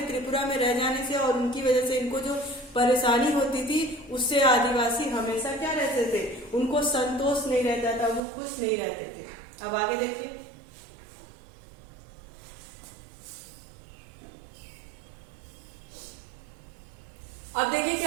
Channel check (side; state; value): left; drops out; at 8.2 s